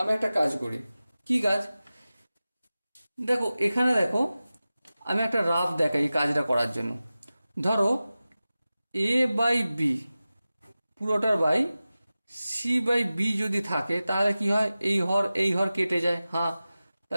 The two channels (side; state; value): both; inverted; correlation -0.96